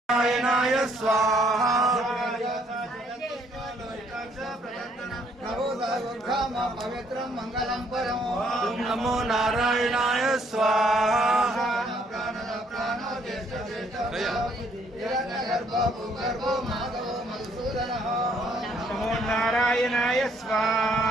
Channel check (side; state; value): both; normal; correlation 0.67